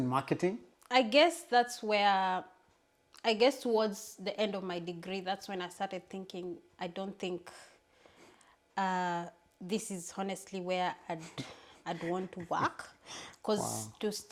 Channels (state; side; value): identical; both; correlation 1.00